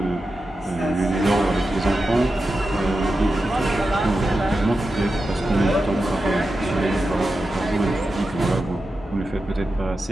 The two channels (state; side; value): normal; both; correlation 0.91